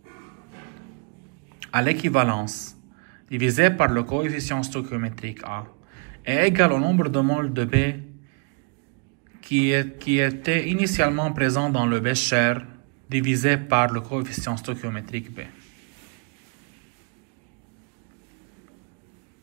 à l'équivalence divisé par le coefficient stoichiométrique A est égal au nombre de moles de B qui était initialement présent dans le bécher divisé par le coefficient stoichiométrique B.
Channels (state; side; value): quieter; left; 35.4 dB